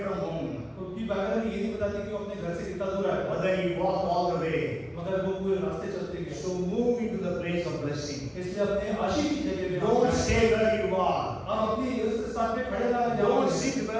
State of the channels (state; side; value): identical; both; correlation 1.00